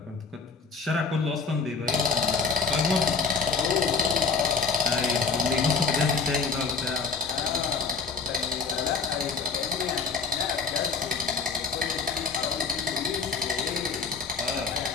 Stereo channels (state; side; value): quieter; right; 4.8 dB